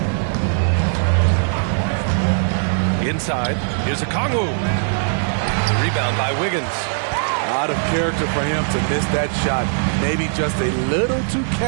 Inside, here's Okongwu. Rebound by Wiggins. Out of character for him to miss that shot. Maybe just a little too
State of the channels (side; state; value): left; silent; digital silence